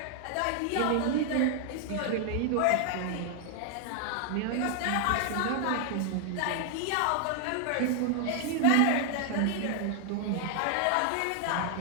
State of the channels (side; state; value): both; different; correlation 0.00